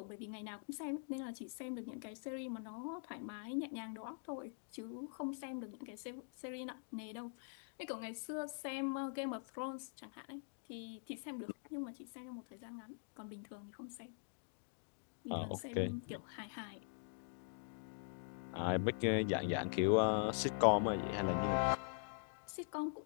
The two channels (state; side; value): silent; right; digital silence